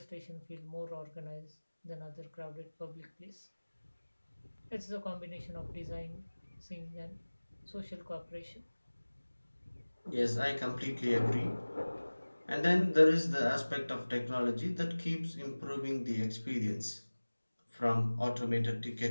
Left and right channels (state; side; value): inverted; both; correlation -1.00